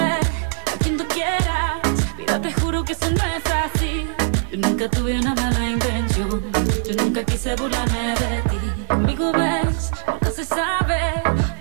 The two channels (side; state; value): left; silent; digital silence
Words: a quien tú quieras, mira te juro que eso no es así. Yo nunca tuve una mala intención, yo nunca quise burlarme de ti. Conmigo ves, nunca se sabe,